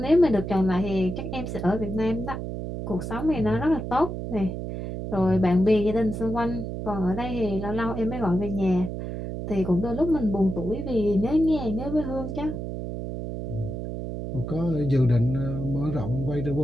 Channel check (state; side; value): noise; right; hum, 6 dB below the sound